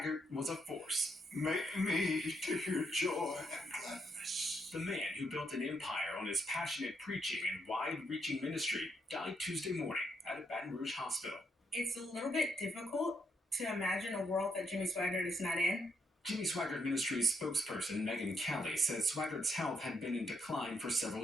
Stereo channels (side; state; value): both; normal; correlation 0.77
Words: was a force. Make me to hear joy and gladness. The man who built an empire on his passionate preaching and wide-reaching ministry died Tuesday morning at a Baton Rouge hospital. It's a little bit difficult to imagine a world that Jimmy Swaggart is not in. Jimmy Swaggart Ministries spokesperson Megan Kelly says Swaggart's health had been in decline for several